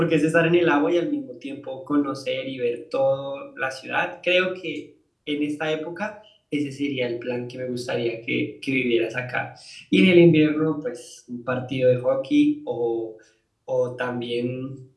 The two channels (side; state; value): both; identical; correlation 1.00